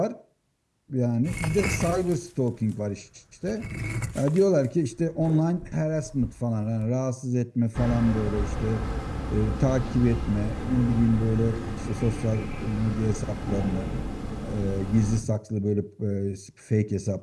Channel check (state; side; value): identical; both; correlation 1.00